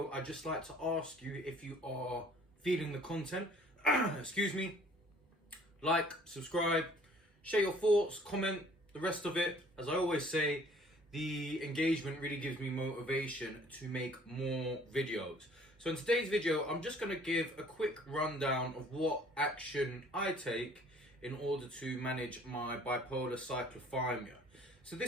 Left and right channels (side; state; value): both; normal; correlation 0.55